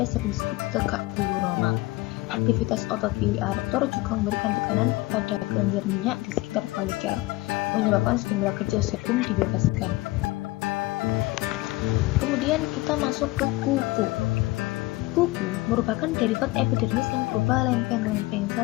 sering disebut tegak bulu normal. Aktivitas otot pili erector juga memberikan tekanan pada kelenjar minyak di sekitar folikel, menyebabkan sejumlah kecil sebum dibebaskan. Kemudian kita masuk ke kuku. Kuku merupakan derivat epidermis yang berupa lempeng-lempeng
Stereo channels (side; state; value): right; quieter; 20.3 dB